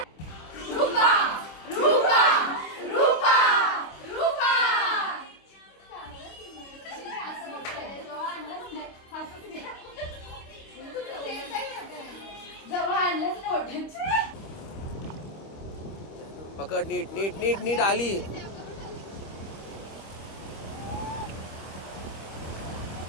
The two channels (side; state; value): right; late; 25 ms